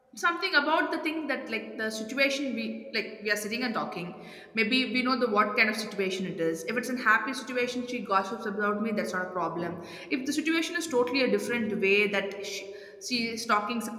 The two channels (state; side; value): identical; both; correlation 1.00